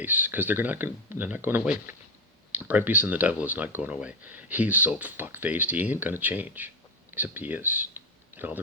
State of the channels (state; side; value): normal; both; correlation 0.11